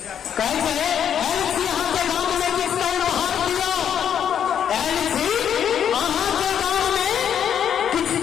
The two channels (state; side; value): quieter; right; 8.8 dB